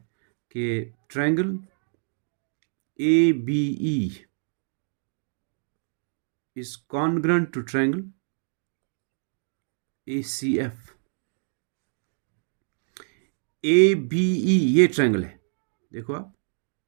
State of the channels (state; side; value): silent; left; digital silence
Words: कि triangle ABE is congruent to triangle ACF. ABE ये ट्रायंगल है, देखो आप,